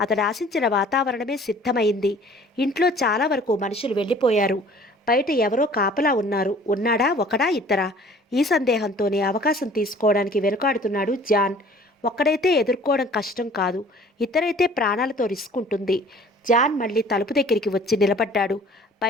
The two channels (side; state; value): both; normal; correlation 0.50